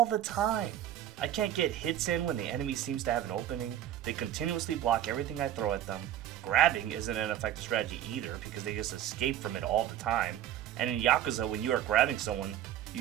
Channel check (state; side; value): quieter; left; 11.5 dB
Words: the time. I can't get hits in when the enemy seems to have an opening. They continuously block everything I throw at them. Grabbing isn't an effective strategy either because they just escape from it all the time. And in Yakuza, when you are grabbing someone,